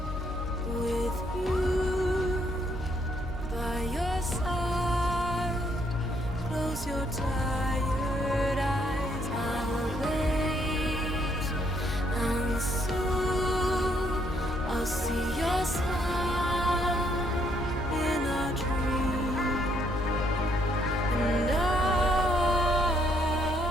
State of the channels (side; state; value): both; normal; correlation 0.71